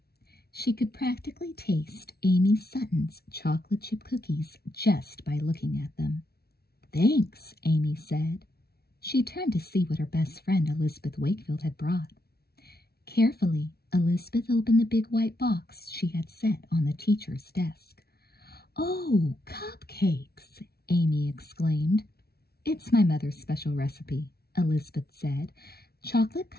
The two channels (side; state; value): right; late; 0.45 ms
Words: She could practically taste Amy Sutton's chocolate chip cookies just by looking at them. "Thanks," Amy said. She turned to see what her best friend Elizabeth Wakefield had brought. Carefully, Elizabeth opened the big white box she had set on the teacher's desk. "Oh, cupcakes!" Amy exclaimed. "It's my mother's special recipe," Elizabeth said. "Chocolate